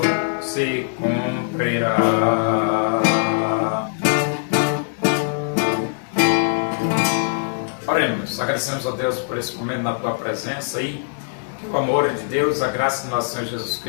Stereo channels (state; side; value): silent; right; digital silence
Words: se cumprirá. Oremos, agradecemos a Deus por esse momento na tua presença e que o amor de Deus, a graça do nosso Senhor Jesus